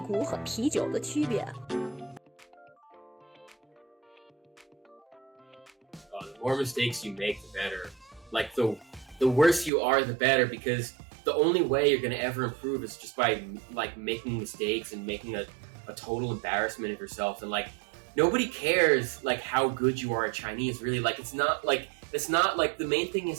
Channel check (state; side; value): drops out; left; at 9.7 s